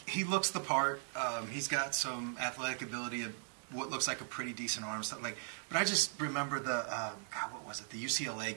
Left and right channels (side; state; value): left; silent; 52 dB below the other